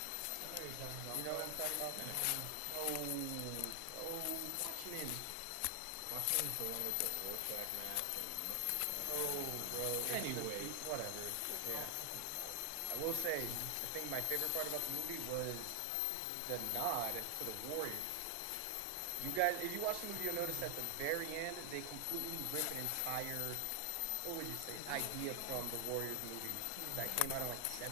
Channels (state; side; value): different; both; correlation 0.00